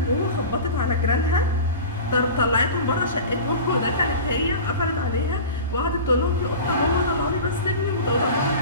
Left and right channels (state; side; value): inverted; both; correlation -0.33